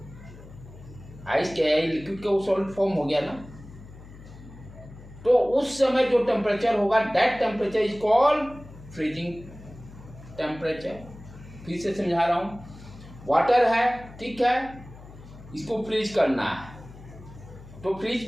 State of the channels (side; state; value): left; noise; hum, 18 dB below the sound